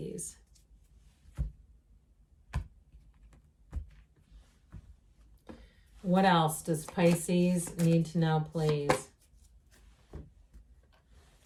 What else does Pisces need to know, please?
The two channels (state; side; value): identical; both; correlation 1.00